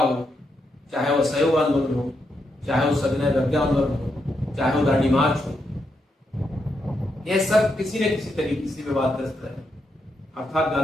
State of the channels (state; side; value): normal; both; correlation 0.82